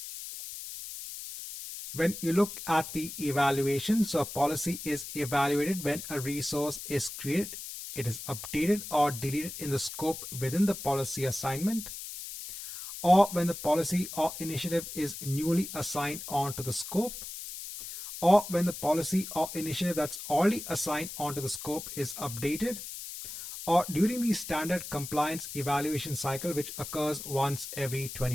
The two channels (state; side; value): noise; left; hiss, 9 dB below the sound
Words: When you look at the evaluation, so a policy is evaluated when a resource is created, it is updated or deleted in the scope within the policy assignment, or when the policy or initiative is newly assigned onto the scope, or when the policy or initiative that's already assigned onto the scope is updated, or during the standard compliance evaluation cycle, which occurs once every